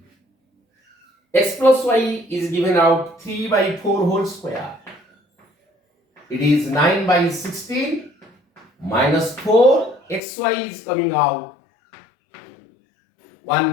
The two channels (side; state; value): right; drops out; at 10.2 s